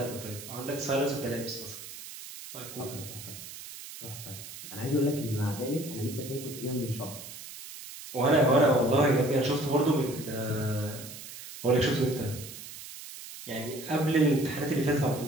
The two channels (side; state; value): right; noise; hiss, 13 dB below the sound